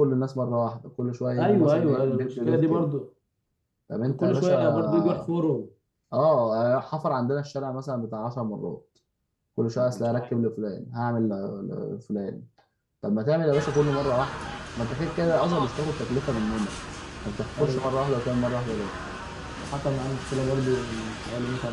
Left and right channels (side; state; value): both; identical; correlation 1.00